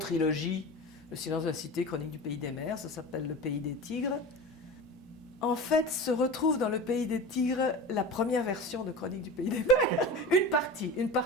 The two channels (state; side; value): normal; both; correlation 0.31